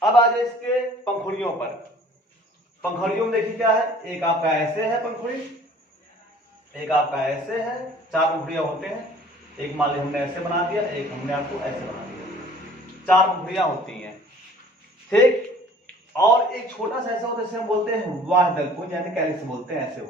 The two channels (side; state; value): both; normal; correlation 0.51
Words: अब आ जाए इसके पंखुड़ियों पर। पंखुड़ियों में देखिए क्या है, एक आपका ऐसे है पंखुड़ी, एक आपका ऐसे है, 4 पंखुड़ियां होते हैं। एक मान ली हमने ऐसे बना दिया, एक हमने आपको ऐसे बना दिया, 4 पंखुड़ियां होती हैं। ठीक, और एक छोटा सा ऐसा होता है जिसे हम बोलते हैं वाहदल पुंज, यानी कैलिक्स बोलते हैं, ऐसे